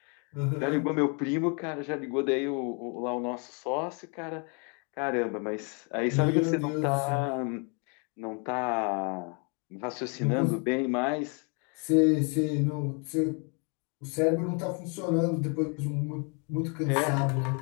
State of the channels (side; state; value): right; quieter; 36.2 dB